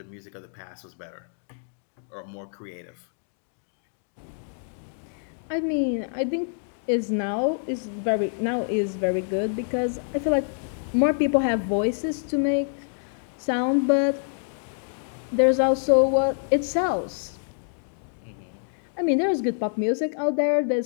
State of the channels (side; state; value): right; silent; digital silence